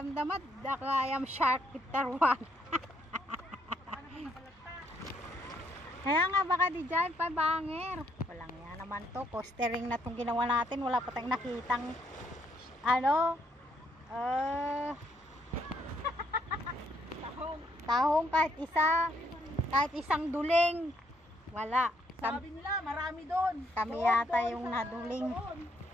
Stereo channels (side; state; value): both; normal; correlation 0.72